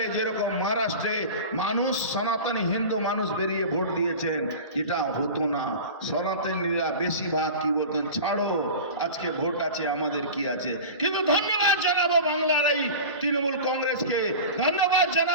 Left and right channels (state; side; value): inverted; both; correlation -0.33